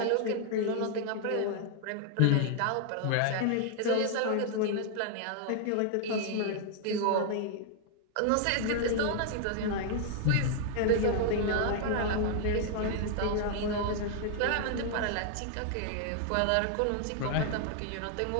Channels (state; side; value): different; both; correlation 0.00